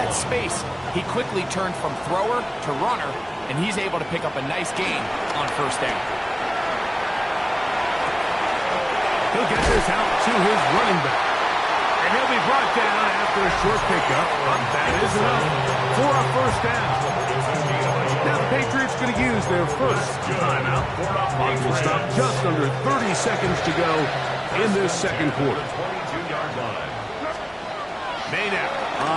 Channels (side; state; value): both; identical; correlation 1.00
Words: space, he quickly turned from thrower to runner, and he's able to pick up a nice gain on first down. He'll get this out to his running back. And he'll be brought down after a short pickup, but that is enough for a first down. Now the Patriots going to use their first timeout. Clock will stop just under 30 seconds to go in this second quarter. 22-yard line. Made out